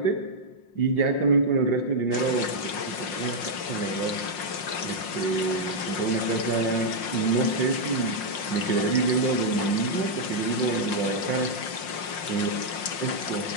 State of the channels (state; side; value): late; right; 5.6 ms